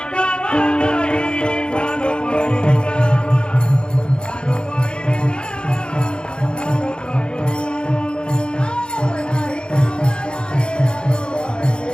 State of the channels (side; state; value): right; late; 0.052 ms